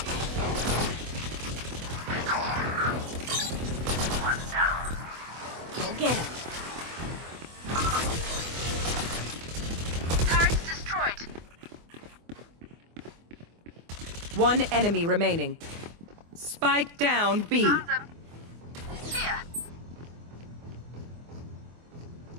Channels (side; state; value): left; late; 24 ms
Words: Go get him. Turrets destroyed. One enemy remaining. Spike down B. Found them. Here.